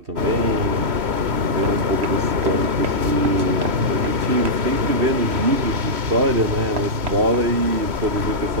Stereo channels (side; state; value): left; late; 3.1 ms